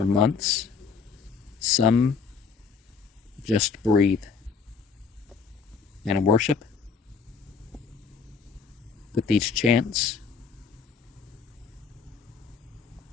months. Some just breathe and worship with these chants,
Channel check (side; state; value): right; quieter; 5.4 dB